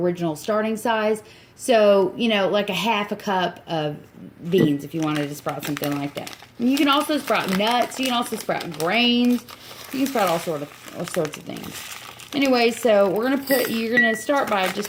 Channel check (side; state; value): both; identical; correlation 1.00